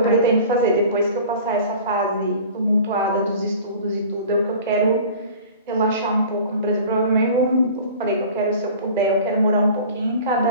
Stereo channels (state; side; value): inverted; both; correlation -0.42